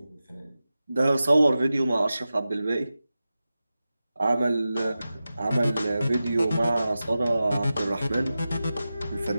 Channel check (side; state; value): both; inverted; correlation -0.94